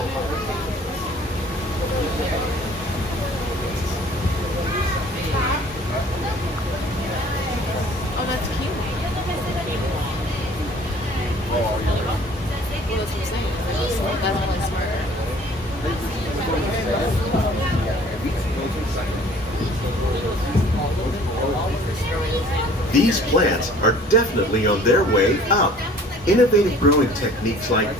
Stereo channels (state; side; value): normal; both; correlation 0.52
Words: These plants are definitely on their way up. Innovative growing techniques like